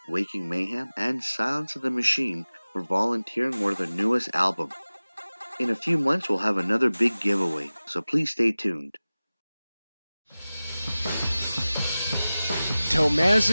Waking Mayhem and Silence of the Machine for volunteering for their newest album. In a few months, we'll have another big giveaway, so please stay tuned.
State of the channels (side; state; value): both; inverted; correlation -0.97